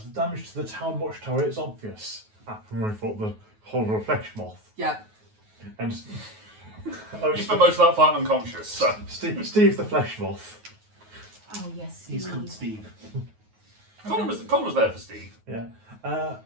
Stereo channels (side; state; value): left; late; 9.4 ms